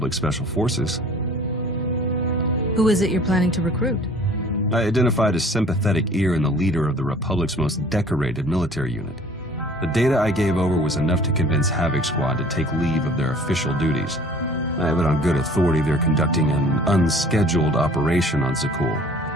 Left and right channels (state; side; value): normal; both; correlation 0.50